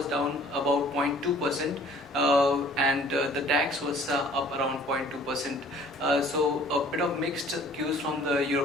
down about 0.2%, and the DAX was up around 0.2%. So a bit of mixed cues from the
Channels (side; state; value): both; normal; correlation 0.53